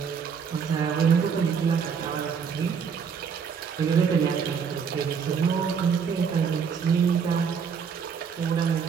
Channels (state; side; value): quieter; left; 6.5 dB